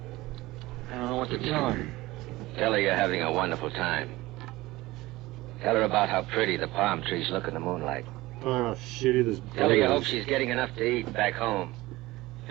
I don't know what to tell her. Tell her you're having a wonderful time. Tell her about how pretty the palm trees look in the moonlight. Oh, shitty this Tell her you hope is. she's getting enough to eat back home.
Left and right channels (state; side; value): quieter; left; 19.1 dB